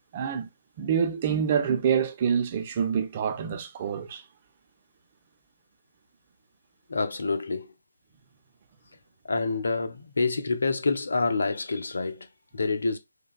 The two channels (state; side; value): inverted; both; correlation -0.70